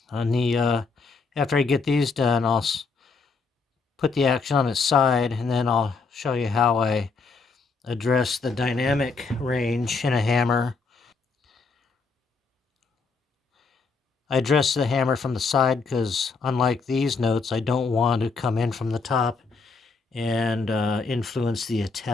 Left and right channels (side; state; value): right; quieter; 4.4 dB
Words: On the after I get these done, I'll put the action on its side, and then I'll show you how I address the dynamic range in a hammer. I address the hammer from the side because, unlike these notes, I don't want to come in from the top and influence the